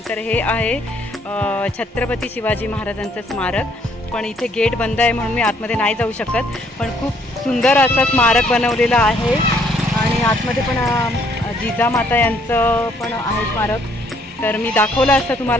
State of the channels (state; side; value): normal; both; correlation 0.66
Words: तर हे आहे छत्रपती शिवाजी महाराजांचं स्मारक. पण इथे गेट बंद आहे म्हणून मी आतमध्ये नाही जाऊ शकत. पण खूप सुंदर असं स्मारक बनवलेलं आहे आणि आतमध्ये पण जिजामाता यांचं पण आहे स्मारक. तर मी दाखवलं असतं